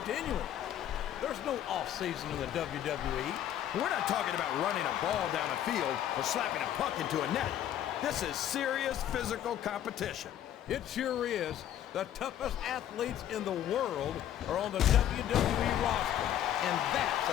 There's no off-season in the WWE. We're not talking about running a ball down a field or slapping a puck into a net. This is serious physical competition. It sure is. The toughest athletes in the world are on the WWE roster, and that's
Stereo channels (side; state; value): right; quieter; 11.2 dB